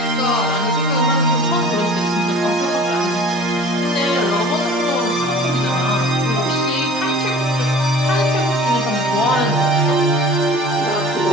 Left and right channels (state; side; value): normal; both; correlation 0.44